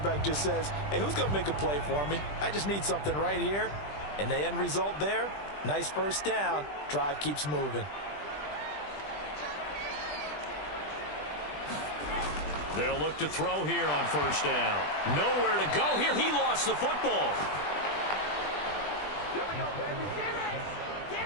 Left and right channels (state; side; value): late; right; 20 ms